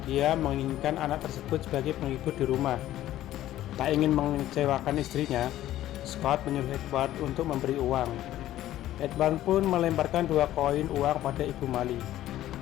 dia menginginkan anak tersebut sebagai penghibur di rumah. Tak ingin mengecewakan istrinya, Scott menyuruh Edward untuk memberi uang. Edward pun melemparkan 2 koin uang pada Ibu Mali.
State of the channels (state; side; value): quieter; right; 13.7 dB